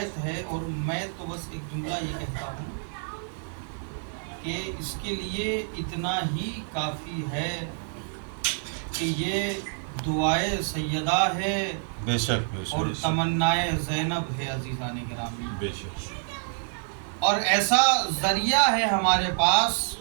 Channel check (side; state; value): left; silent; 60 dB below the other